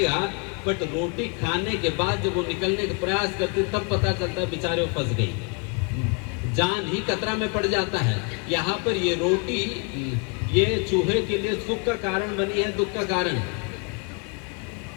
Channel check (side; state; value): right; quieter; 34.4 dB